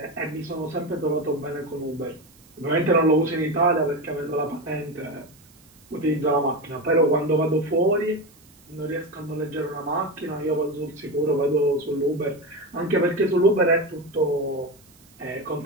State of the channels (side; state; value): right; noise; hiss, 28 dB below the sound